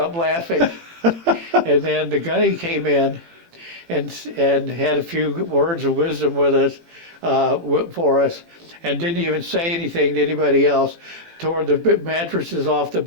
laughing. And then the gunny came in and had a few words of wisdom with us, for us, and didn't even say anything to anybody else. Tore the mattresses off the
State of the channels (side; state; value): left; late; 18 ms